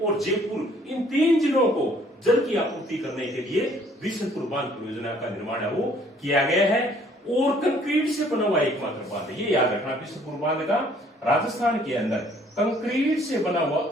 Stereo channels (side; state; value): both; normal; correlation 0.60